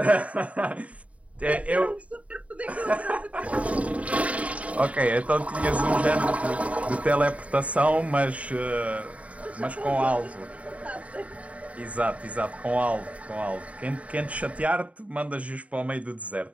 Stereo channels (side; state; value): left; late; 0.066 ms